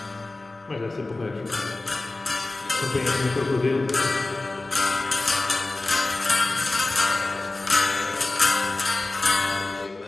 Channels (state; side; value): quieter; right; 3.0 dB